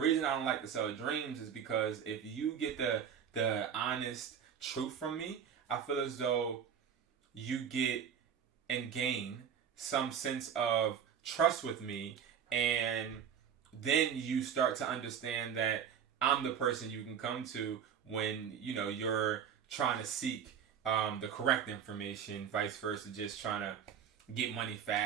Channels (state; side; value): quieter; left; 8.1 dB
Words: I don't like to sell dreams is because if you get the honest truth from me, I feel as though you get and gain some sense of trust with me, and then you start to understand that I'm the person you can come to when you're trying to seek the correct information, vice versa, just trying to get money